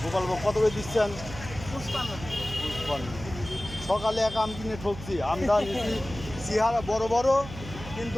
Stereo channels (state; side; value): noise; right; hum, 12 dB below the sound